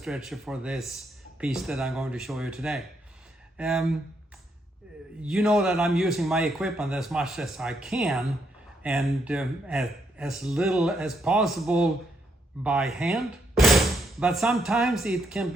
for this piece that I'm going to show you today. You know that I'm using my equipment as much as I can, and as little as possible by hand, but sometimes it can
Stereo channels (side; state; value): both; normal; correlation 0.76